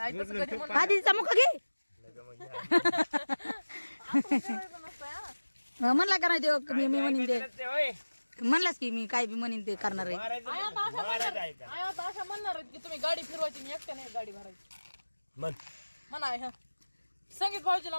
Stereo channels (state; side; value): inverted; both; correlation -1.00